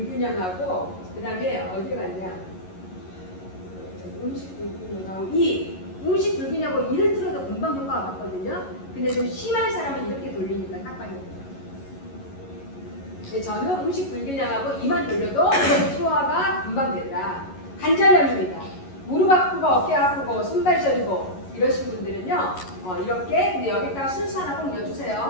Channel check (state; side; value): late; right; 11 ms